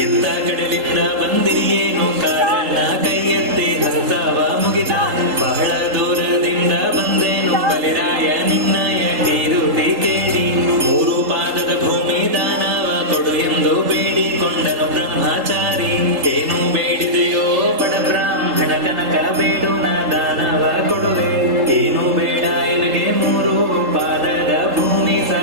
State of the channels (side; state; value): left; late; 3.8 ms